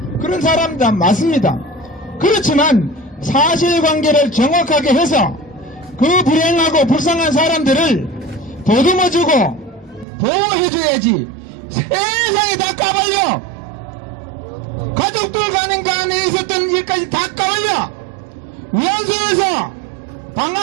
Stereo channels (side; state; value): left; drops out; at 10.1 s